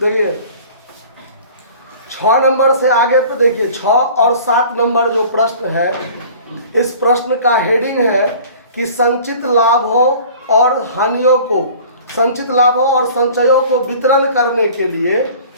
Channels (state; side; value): inverted; both; correlation -0.46